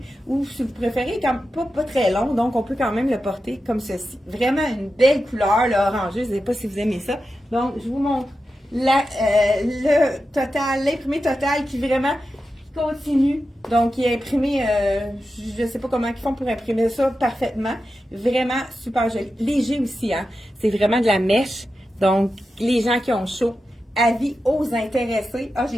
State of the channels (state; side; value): normal; both; correlation 0.91